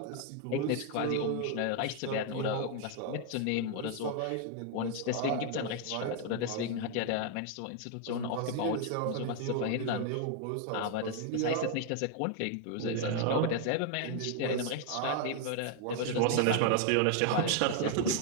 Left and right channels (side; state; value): both; different; correlation 0.00